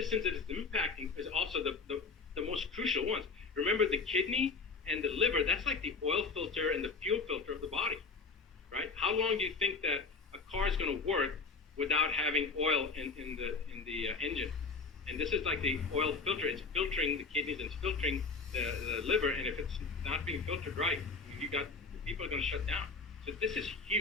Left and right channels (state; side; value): quieter; right; 4.5 dB